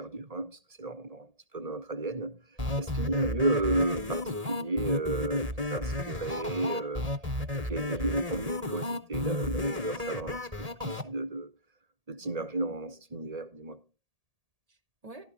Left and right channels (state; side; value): late; left; 1.8 ms